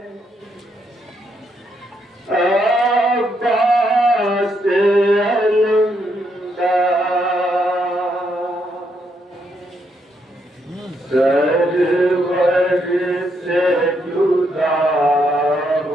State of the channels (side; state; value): both; normal; correlation 0.77